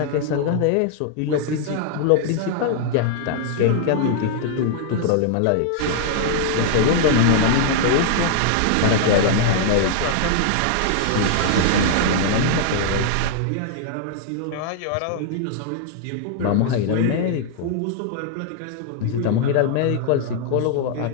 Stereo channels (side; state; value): both; different; correlation -0.01